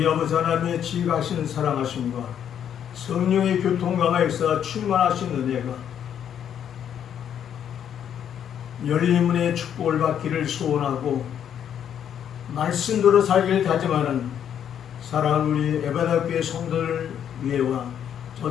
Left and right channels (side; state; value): right; quieter; 9.2 dB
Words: 아버지 하나님의 지극하신 사랑하심과 성령의 교통강화 역사 충만하신 은혜가 열린 문의 축복을 받기를 소원하고 말씀대로 살기를 다짐하는 사랑하는 우리 에베다교회 성도들 위에와